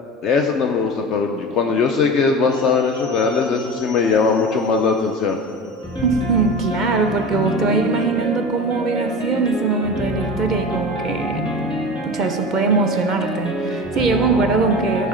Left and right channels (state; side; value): normal; both; correlation 0.31